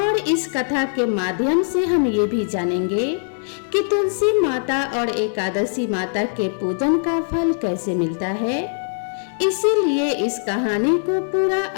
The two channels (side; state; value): right; silent; digital silence